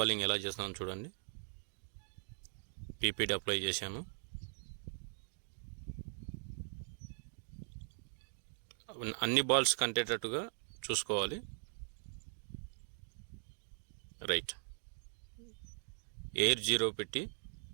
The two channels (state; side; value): silent; left; digital silence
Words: ఎలా చేస్తున్నాను చూడండి. PPD అప్లై చేశాను. అన్ని బాల్స్ కంటేటట్టుగా చూసుకోవాలి. రైట్. ఎయిర్ 0 పెట్టి